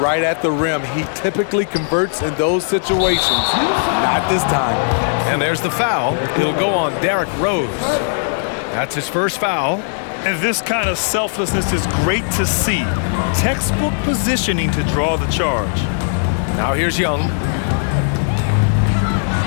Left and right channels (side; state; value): right; silent; digital silence